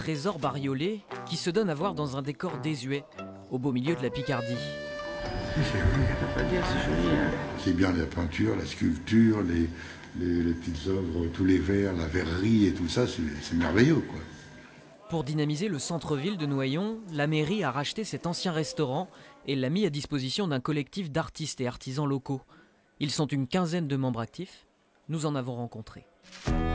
bariolé qui se donne à voir dans un décor désuet, au beau milieu de la Picardie? C'est joli, on peut pas dire, c'est joli. Hein. C'est bien la peinture, la sculpture, les petites œuvres, tous les verres, la verrerie et tout ça, c'est merveilleux, quoi. Pour dynamiser le centre-ville de Noyon, la mairie a racheté cet ancien restaurant et l'a mis à disposition d'un collectif d'artistes et artisans locaux. Ils sont une quinzaine de membres actifs. Nous en avons rencontré.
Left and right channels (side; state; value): both; identical; correlation 1.00